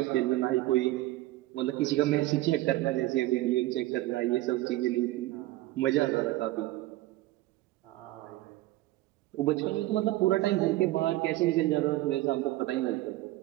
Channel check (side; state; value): left; quieter; 17.4 dB